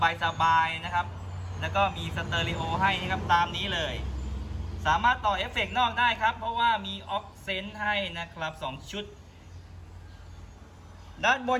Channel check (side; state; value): both; identical; correlation 1.00